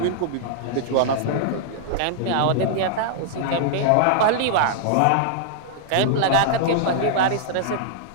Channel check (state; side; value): different; both; correlation -0.01